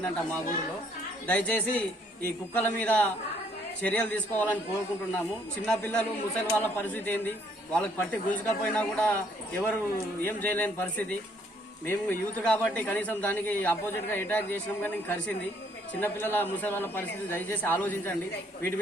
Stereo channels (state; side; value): normal; both; correlation 0.66